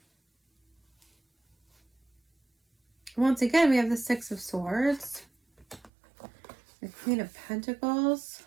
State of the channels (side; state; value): left; drops out; at 5.9 s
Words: once again, we have the 6 of Swords, the Queen of Pentacles.